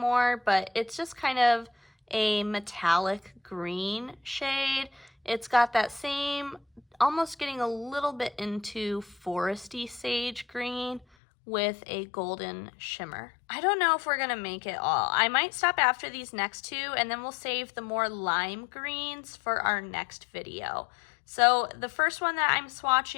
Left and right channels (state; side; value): drops out; right; at 11.1 s